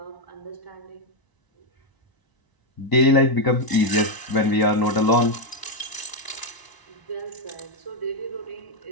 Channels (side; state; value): right; late; 1.0 ms